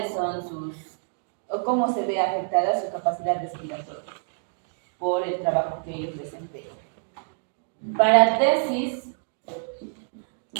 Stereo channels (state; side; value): silent; left; digital silence